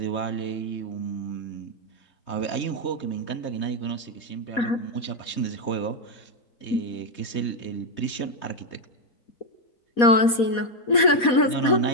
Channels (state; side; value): late; right; 4.2 ms